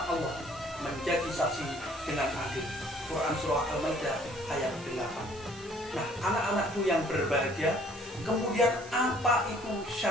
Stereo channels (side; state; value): right; noise; hiss, 20 dB below the sound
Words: Allah, menjadi saksi dengan adil. Quran surah Al-Maidah ayat 8. Nah, anak-anakku yang berbahagia, kemudian apa itu